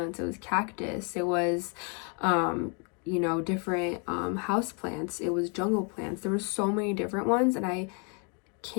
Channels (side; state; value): right; quieter; 37.5 dB